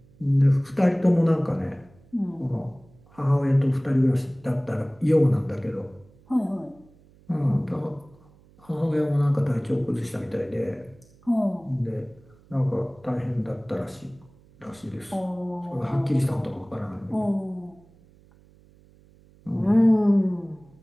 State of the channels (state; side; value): noise; right; hum, 28 dB below the sound